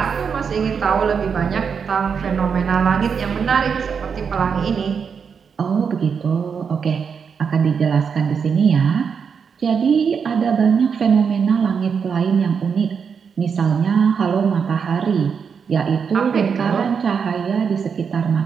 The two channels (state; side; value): quieter; left; 6.4 dB